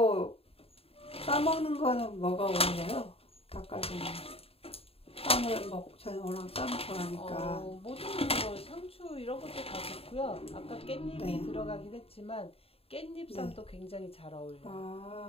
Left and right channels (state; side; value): late; right; 0.28 ms